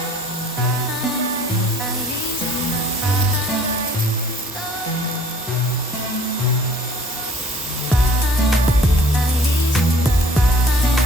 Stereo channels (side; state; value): both; normal; correlation 0.53